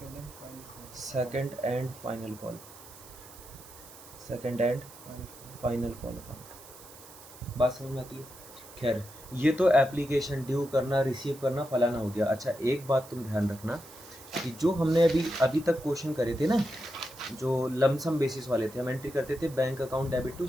second and final call second and final call final call account. बात समझ में आती है। खैर ये तो एप्लीकेशन ड्यू करना रिसीव करना फलाना हो गया। अच्छा एक बात तुम ध्यान रखना कि जो हमने अभी तक क्वेश्चन करे थे ना, जो लमसम बेसिस वाले थे, हम एंट्री करते थे bank account debit to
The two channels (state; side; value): noise; right; hiss, 18 dB below the sound